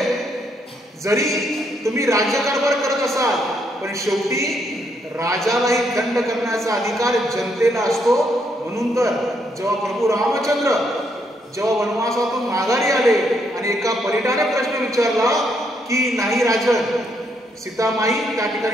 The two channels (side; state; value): both; normal; correlation 0.74